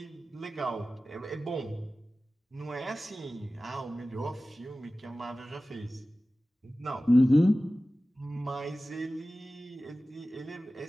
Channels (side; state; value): both; normal; correlation 0.96